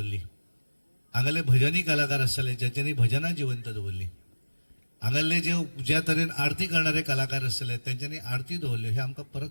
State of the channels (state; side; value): inverted; both; correlation -1.00